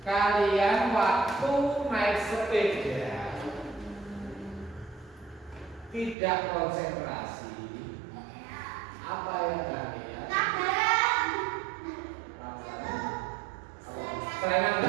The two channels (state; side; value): drops out; left; at 6.2 s